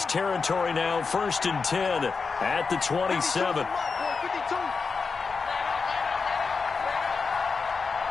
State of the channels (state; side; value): quieter; right; 4.8 dB